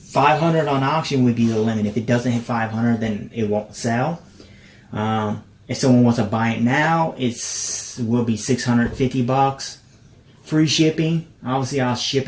500 on auction would be the limit. If it doesn't hit 500, then it won't sell. If someone wants to buy it now, it will be $650. Free shipping. Obviously, I'll ship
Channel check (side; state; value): both; identical; correlation 1.00